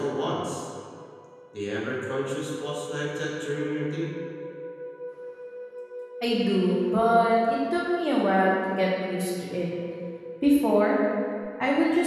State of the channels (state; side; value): identical; both; correlation 1.00